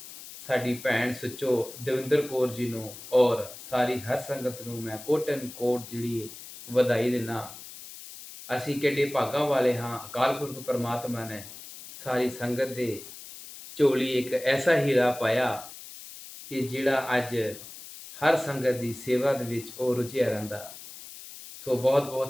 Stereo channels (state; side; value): noise; left; hiss, 14 dB below the sound